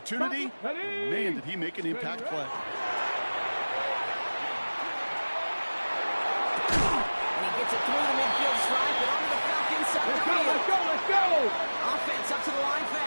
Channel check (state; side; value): inverted; both; correlation -1.00